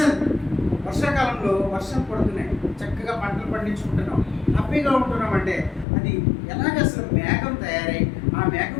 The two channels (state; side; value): drops out; right; at 5.9 s